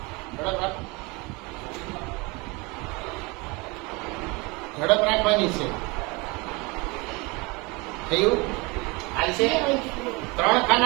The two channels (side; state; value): left; quieter; 26.6 dB